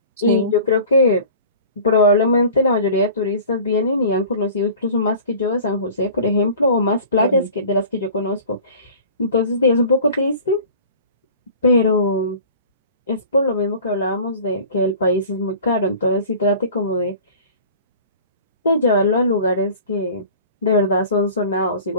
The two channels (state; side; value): inverted; both; correlation -0.43